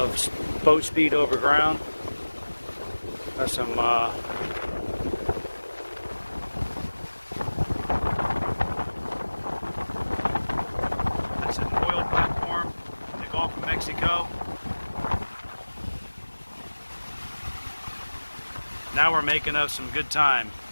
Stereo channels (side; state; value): both; inverted; correlation -1.00